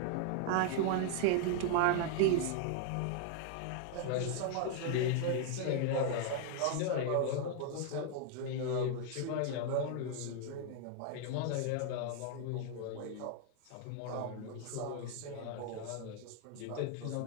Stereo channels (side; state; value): both; different; correlation 0.00